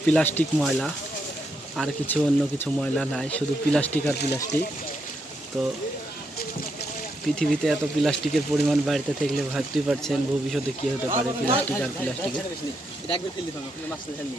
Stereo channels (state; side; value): normal; both; correlation 0.80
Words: প্লাস্টিক ময়লা, আর কিছু অন্য কিছু ময়লা নাই, শুধু প্লাস্টিক আর প্লাস্টিক। তো পৃথিবীতে এত প্লাস্টিকের পরিমাণ বাড়িতে থাকলে ভাবতেই পারছেন ভবিষ্যতে কী হতে পারে প্লাস্টিক আর প্লাস্টিকের।